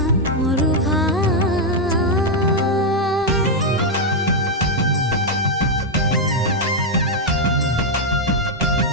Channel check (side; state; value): both; normal; correlation 0.00